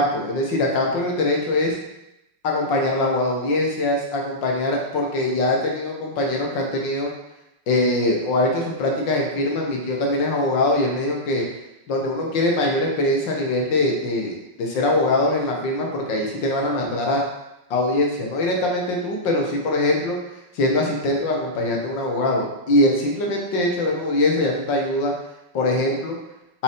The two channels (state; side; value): late; right; 5.6 ms